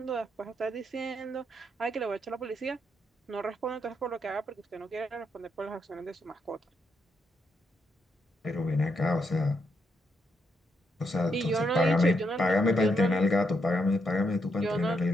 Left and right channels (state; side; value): normal; both; correlation 0.79